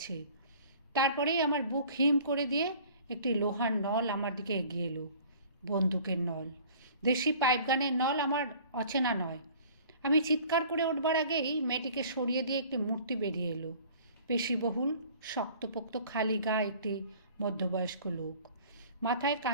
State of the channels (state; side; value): inverted; both; correlation -0.49